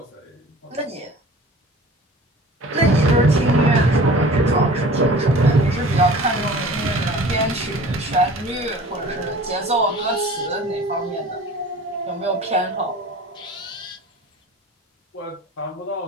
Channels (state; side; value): normal; both; correlation 0.43